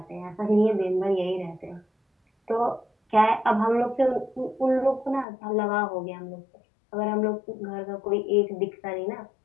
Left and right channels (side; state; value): right; drops out; at 5.2 s